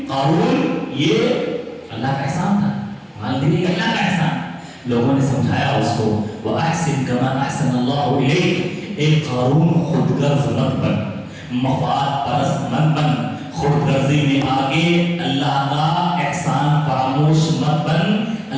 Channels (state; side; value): identical; both; correlation 1.00